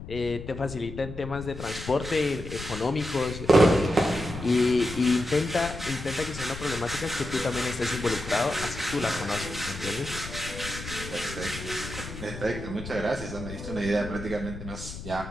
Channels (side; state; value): left; noise; rumble, 10 dB below the sound